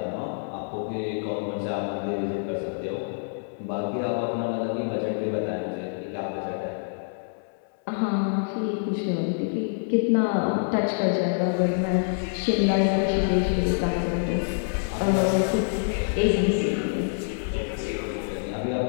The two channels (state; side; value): silent; right; 61 dB below the other